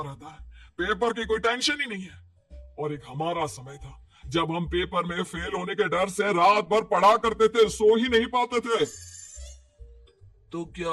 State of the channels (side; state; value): both; identical; correlation 1.00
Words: रहता है, पेपर की कोई टेंशन ही नहीं है। और एक हमारा समय था जब हम पेपर में फेल होने के डर से रात भर पढ़ा करते थे, सो ही नहीं पाते थे। तो क्या